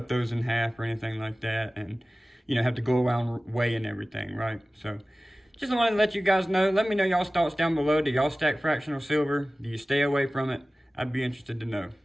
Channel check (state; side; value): normal; both; correlation 0.97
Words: those in half or anything like that, and have to go around weighing everything, right? So just wanted to let you guys know. Let me know y'all's thoughts down below. Do y'all stack fractional silver? Do you stay away from it? I'd be interested to know.